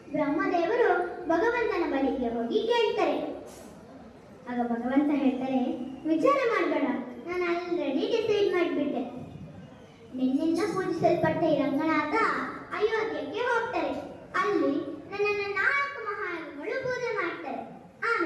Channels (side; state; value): both; identical; correlation 1.00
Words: ಬ್ರಹ್ಮದೇವರು ಭಗವಂತನ ಬಳಿಗೆ ಹೋಗಿ ಕೇಳ್ತಾರೆ. ಆಗ ಭಗವಂತ ಹೇಳ್ತಾರೆ, ವಿಚಾರ ಮಾಡಬೇಡ, ನಾನು ಆಲ್ರೆಡಿ ಡಿಸೈಡ್ ಮಾಡಿಬಿಟ್ಟೆ. ನಿನ್ನಿಂದ ಪೂಜಿಸಲ್ಪಟ್ಟ ಈ ರಂಗನಾಥ ಅಯೋಧ್ಯಕ್ಕೆ ಹೋಗ್ತಾರೆ. ಅಲ್ಲಿ ನನ್ನನ್ನು 4 ಮಹಾಯುಗಳು ಪೂಜೆ ಮಾಡ್ತಾರೆ.